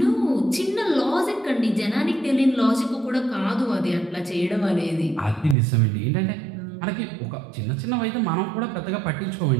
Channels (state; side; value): drops out; left; at 5.6 s